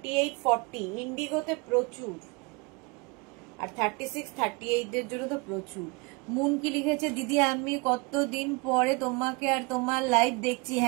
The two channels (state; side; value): quieter; left; 28.1 dB